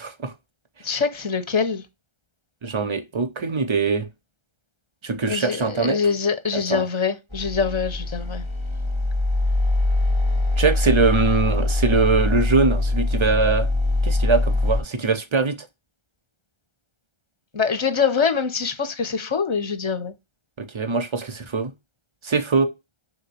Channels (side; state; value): left; late; 1.3 ms